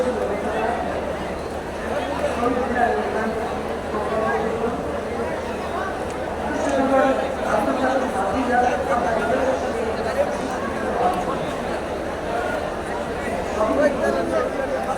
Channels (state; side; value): identical; both; correlation 1.00